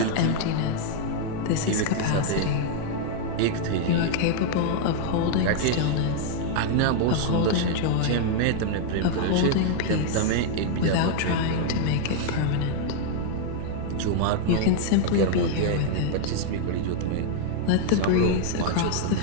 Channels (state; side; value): different; both; correlation 0.00